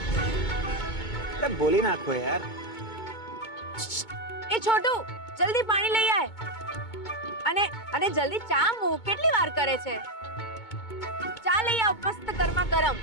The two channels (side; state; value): right; late; 2.2 ms